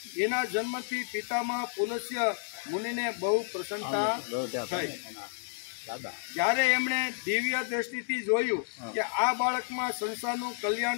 એના જન્મથી પિતામહ પુલસ્ય મુનિને બહુ પ્રસન્નતા થઈ। જ્યારે એમણે દિવ્ય દ્રષ્ટિથી જોયું કે આ બાળકમાં સંસારનું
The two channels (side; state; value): right; silent; 57 dB below the other